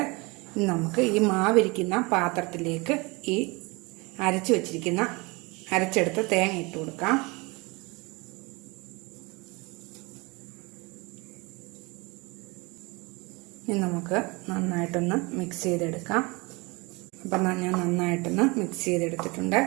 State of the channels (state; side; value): quieter; left; 26.3 dB